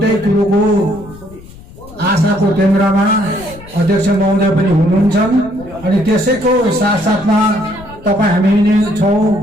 कुरोको आशाको केन्द्रमा अध्यक्ष महोदय पनि हुनुहुन्छन् अनि त्यसैको साथसाथमा तपाईँ हामी नै छौँ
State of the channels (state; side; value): noise; left; rumble, 19 dB below the sound